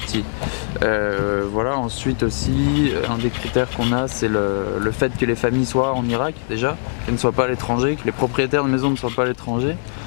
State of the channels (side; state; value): right; silent; digital silence